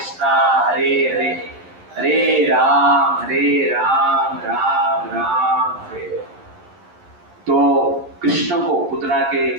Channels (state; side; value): late; left; 11 ms